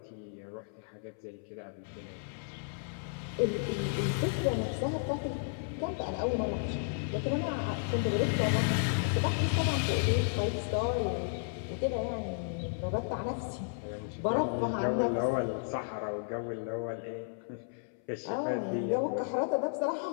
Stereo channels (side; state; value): right; silent; 56 dB below the other